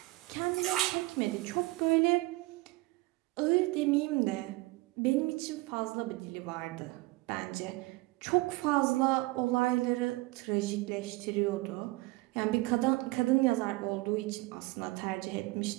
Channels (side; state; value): left; quieter; 22.0 dB